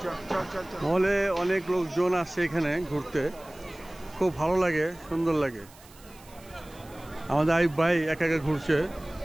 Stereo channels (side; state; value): right; noise; hiss, 24 dB below the sound